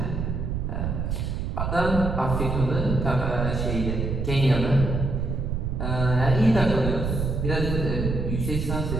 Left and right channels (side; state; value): right; noise; rumble, 2 dB below the sound